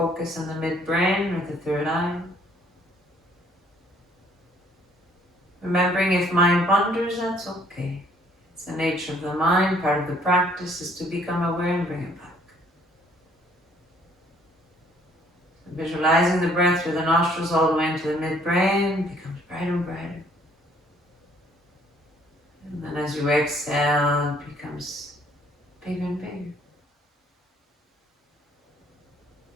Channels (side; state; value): both; normal; correlation 0.62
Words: in the midbrain or the third eye. Remembering if mind wanders, that's okay. It's the nature of the mind. Part of the practice is to become aware and bring it back. So visualizing the breath through the nostrils all the way into the midbrain becomes brighter and brighter. And then as you exhale, it becomes bigger and bigger.